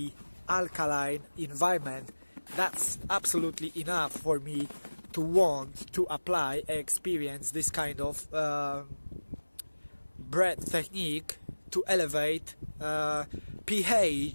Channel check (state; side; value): inverted; both; correlation -1.00